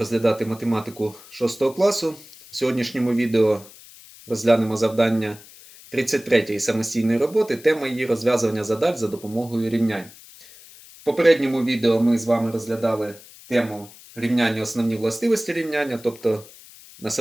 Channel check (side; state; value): left; noise; hiss, 21 dB below the sound